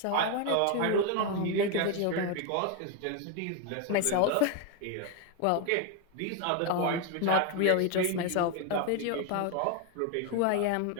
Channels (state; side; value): different; both; correlation 0.01